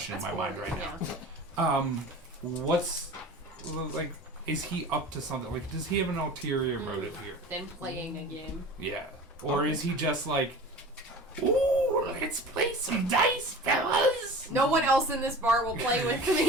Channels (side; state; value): both; normal; correlation 0.37